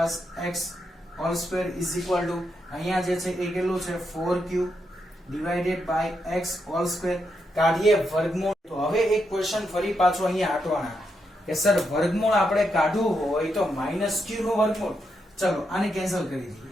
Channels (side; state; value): both; normal; correlation 0.82